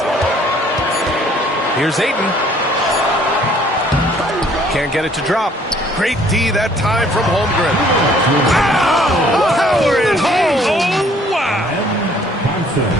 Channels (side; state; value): both; normal; correlation 0.59